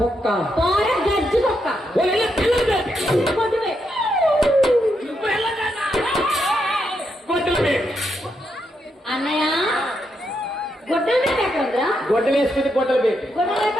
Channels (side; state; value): both; normal; correlation 0.81